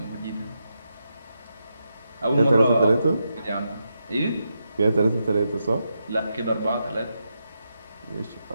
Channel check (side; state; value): both; inverted; correlation -0.85